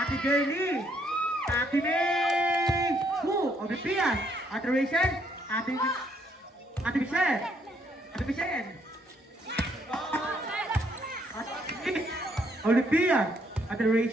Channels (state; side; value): normal; both; correlation 0.70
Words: Jelly, Ate May, Ate Pia, Ate Rachel, Ate Michelle, Ate Michelle, Ate Olivia, Ate